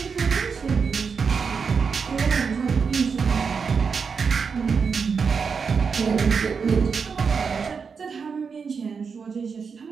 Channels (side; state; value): left; quieter; 5.7 dB